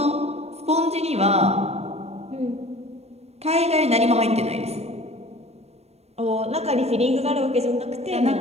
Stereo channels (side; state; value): left; late; 0.31 ms